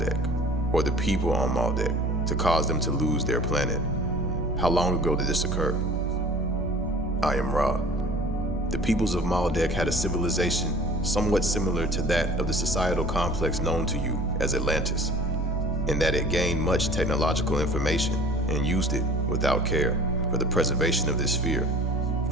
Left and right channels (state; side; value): normal; both; correlation 0.46